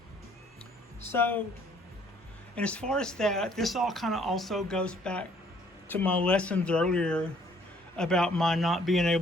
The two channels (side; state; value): both; normal; correlation 0.62